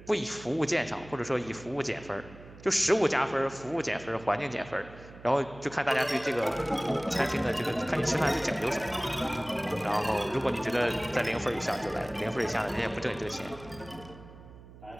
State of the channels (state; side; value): noise; right; hum, 19 dB below the sound